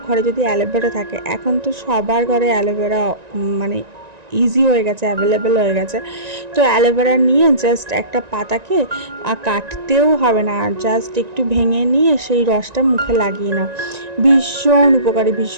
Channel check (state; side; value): late; left; 1.9 ms